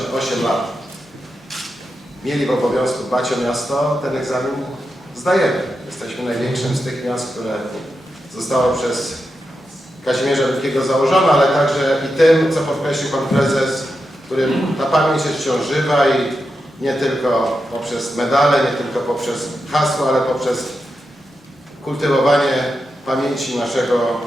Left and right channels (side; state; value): both; normal; correlation 0.88